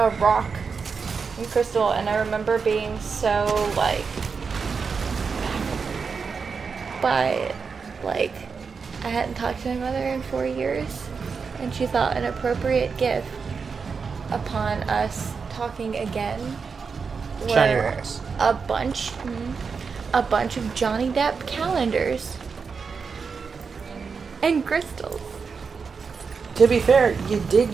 rock and crystal, and I remember being so, like, I hadn't talked to my mother in 4 years, and she thought an appropriate gift upon us talking again Shiny were rocks. a bunch of Johnny Depp calendars and crystals. To be fair, you did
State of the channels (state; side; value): quieter; left; 5.4 dB